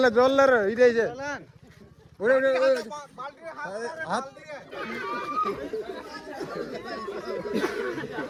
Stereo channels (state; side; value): identical; both; correlation 1.00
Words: লে জল লে রে এই যে ওরে ওরে হাত